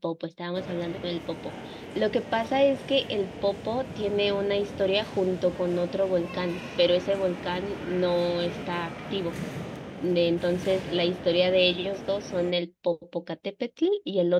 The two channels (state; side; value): identical; both; correlation 1.00